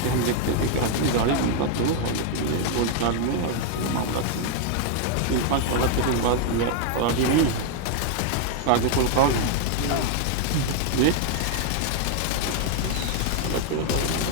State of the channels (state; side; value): different; both; correlation 0.01